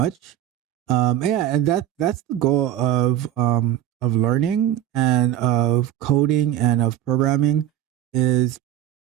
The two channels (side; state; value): left; quieter; 12.1 dB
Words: Yeah, and that's the goal of learning and of coding and of programming is